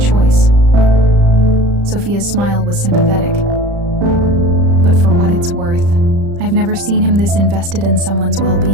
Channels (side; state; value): left; late; 35 ms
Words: Sophia's smile was sympathetic. "But for what it's worth, I've never seen him this invested in someone's